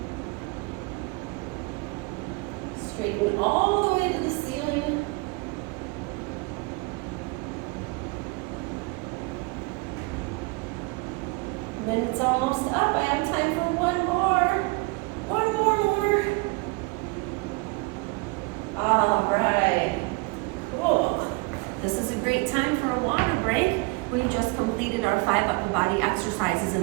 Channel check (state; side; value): quieter; left; 26.9 dB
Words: Straighten all the way to the ceiling. And then it's almost up. I have time for one more. One more. All right. Cool. This is a great time for a water break. We just completed our 5 upper body exercises